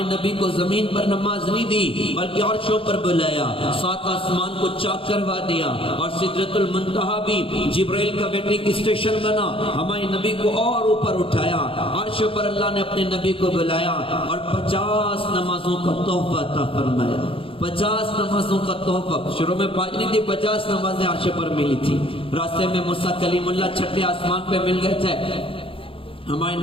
نبی کو زمین پر نماز نہیں دی بلکہ عرشوں پر بلایا، سات آسمان کو چاک کروا دیا، اور سدرۃ المنتہا بھی جبرائیل کا ویٹنگ اسٹیشن بنا۔ ہمارے نبی کو اور اوپر اٹھایا، عرش پر اللہ نے اپنے نبی کو بلایا اور 50 نمازوں کا تحفہ عطا فرمایا۔ 50 نمازوں کا تحفہ، شروع میں 5 نہیں تھی، 50 نمازیں عرش پر ملی تھی۔ راستے میں موسیٰ کلیم اللہ چھٹے آسمان پہ مل گئے تھے۔ ہمارے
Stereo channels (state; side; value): late; right; 0.26 ms